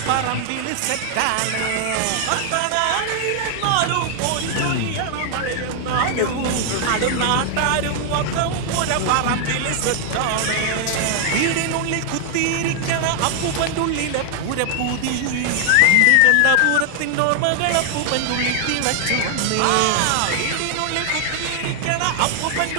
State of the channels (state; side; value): different; both; correlation 0.00